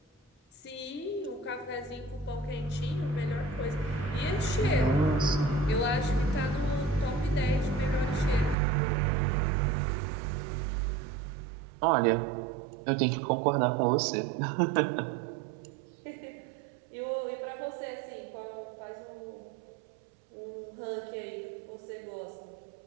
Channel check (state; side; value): drops out; left; at 8.6 s